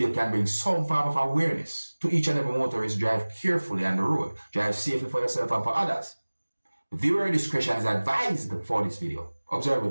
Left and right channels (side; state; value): both; inverted; correlation -1.00